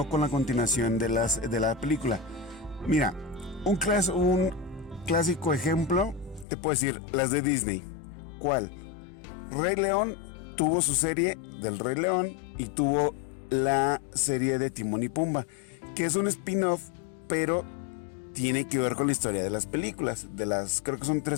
con la continuación de la película. Mira, un clásico ejemplo, te puedo decir, las de Disney. ¿Cuál? Rey León tuvo su serie del Rey León y tuvo la serie de Timón y Pumba, que es un spin-off, pero tiene que ver con la historia de las películas, creo que son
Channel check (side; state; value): right; drops out; at 6.5 s